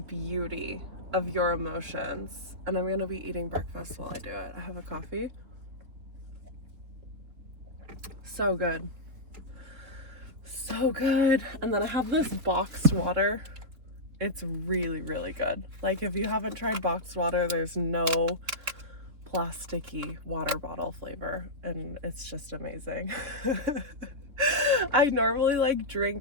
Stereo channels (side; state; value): left; late; 3.9 ms